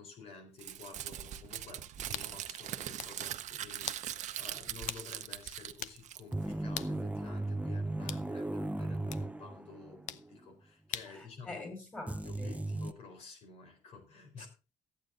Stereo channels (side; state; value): both; normal; correlation 0.64